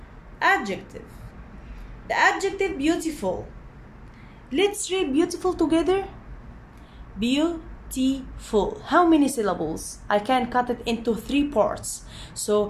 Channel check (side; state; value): both; identical; correlation 1.00